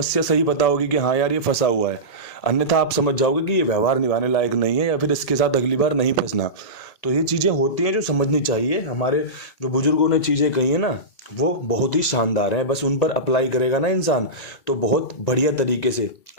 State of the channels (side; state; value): right; late; 1.7 ms